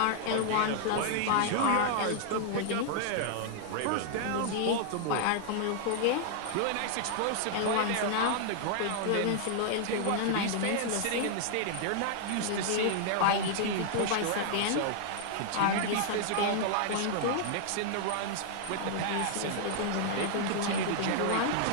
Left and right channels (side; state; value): both; different; correlation -0.01